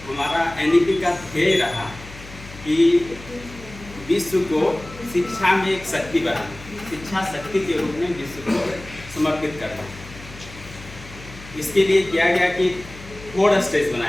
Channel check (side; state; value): left; noise; hum, 17 dB below the sound